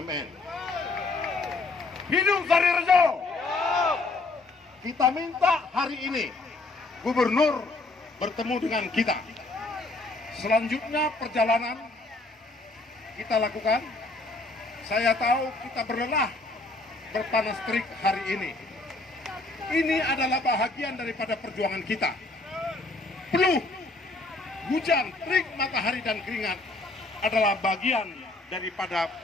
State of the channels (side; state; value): right; quieter; 3.2 dB